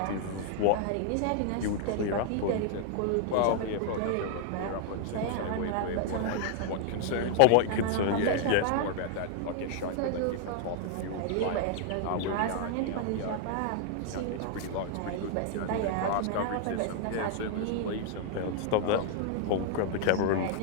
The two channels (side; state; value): both; different; correlation 0.00